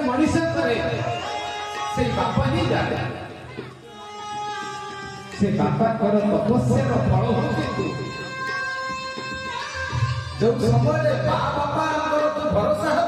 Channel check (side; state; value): both; identical; correlation 1.00